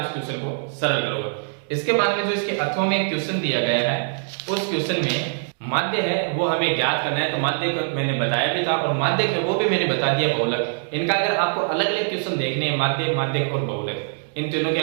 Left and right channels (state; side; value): silent; left; digital silence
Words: उस क्वेश्चन को सरल करोगे। इसके बाद में जो इसके अथवा में एक क्वेश्चन दिया गया है, उस क्वेश्चन में माध्य है वो हमें ज्ञात करना है। तो माध्य मैंने बताया भी था और माध्यक है वो भी मैंने बता दिया बहुलक। इनका अगर आपको अलग अलग क्वेश्चन देखने हैं, माध्य, माध्यक और बहुलक, इन तीनों के